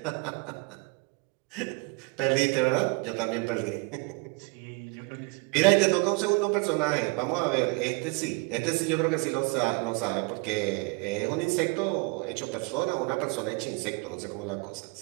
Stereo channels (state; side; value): quieter; left; 30.2 dB